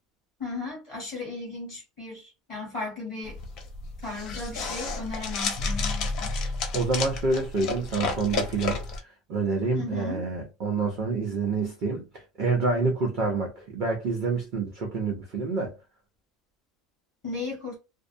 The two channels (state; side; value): normal; both; correlation 0.40